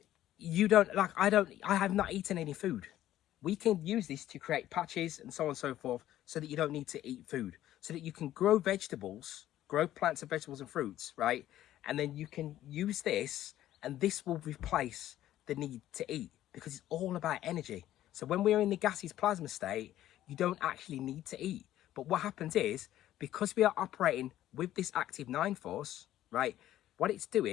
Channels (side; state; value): right; quieter; 13.1 dB